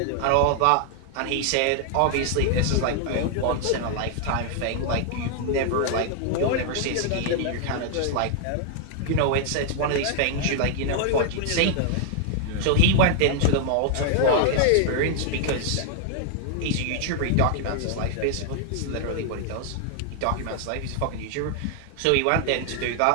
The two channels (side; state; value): both; different; correlation 0.00